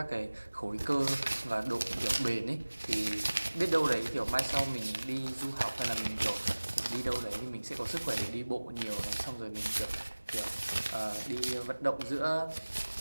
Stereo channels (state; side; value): inverted; both; correlation -1.00